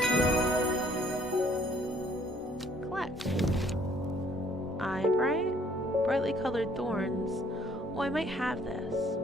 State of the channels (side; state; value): both; normal; correlation 0.61